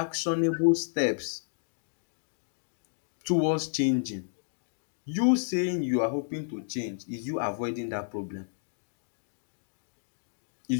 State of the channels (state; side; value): silent; right; digital silence